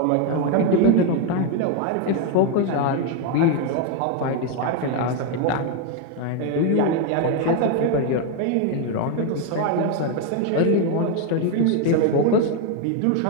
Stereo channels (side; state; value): both; different; correlation 0.01